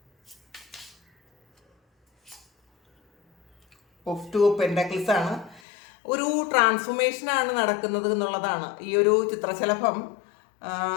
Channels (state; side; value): drops out; right; at 5.6 s